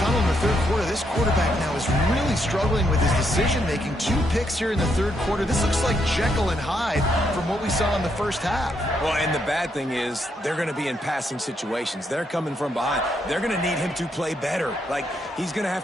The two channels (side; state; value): both; normal; correlation 0.77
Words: in the 3rd quarter, this quarterback now is really struggling with his decision-making. 2 picks here in the 3rd quarter. This looks like Jekyll and Hyde from what we saw in the 1st half. Well, and the bad thing is they're going to be in passing situations. They're coming from behind. They're going to need him to play better. Like, he's going to